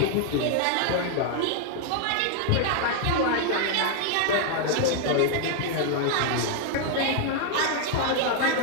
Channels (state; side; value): different; both; correlation 0.00